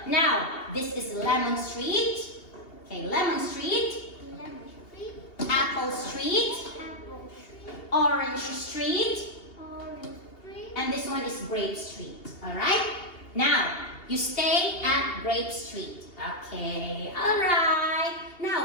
Now, this is Lemon Street. Okay, Lemon Street, Lemon Street. Apple Street, Apple Street. Orange Street, Orange Street. and this one is Grape Street. All right? Now, you stay at Grape Street. Okay, all right.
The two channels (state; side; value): late; right; 2.8 ms